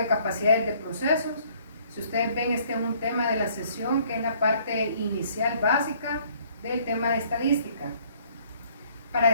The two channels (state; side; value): inverted; both; correlation -0.61